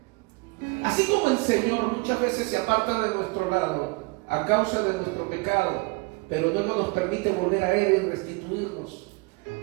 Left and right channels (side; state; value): left; quieter; 28.4 dB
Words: Así como el Señor muchas veces se aparta de nuestro lado a causa de nuestro pecado, pero no nos permite volver a Él y restituirnos,